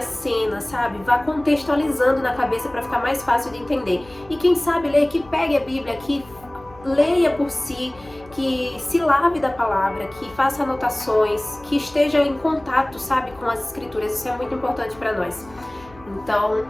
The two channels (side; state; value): left; noise; hum, 23 dB below the sound